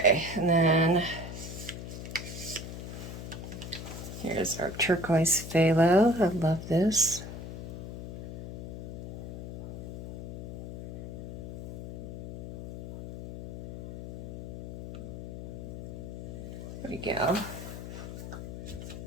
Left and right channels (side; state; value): left; noise; hum, 8 dB below the sound